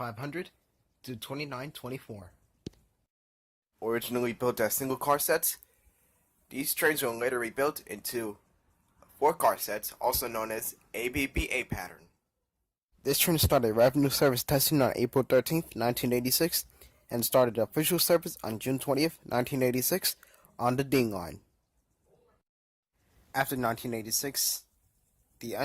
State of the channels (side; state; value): both; identical; correlation 1.00